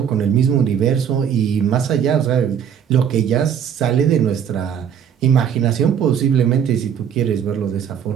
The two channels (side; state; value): left; quieter; 8.4 dB